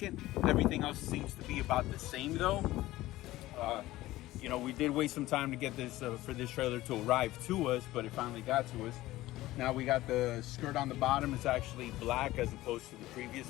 Everything else seems to be about the same though. We did wait some time to get this for this trailer to arrive to us, but it finally got to us. Now we got the skirt on the bottom. It's actually black as opposed to the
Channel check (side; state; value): right; quieter; 16.8 dB